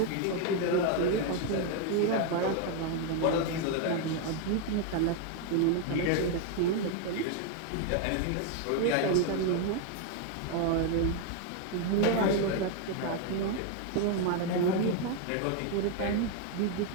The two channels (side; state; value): both; different; correlation 0.01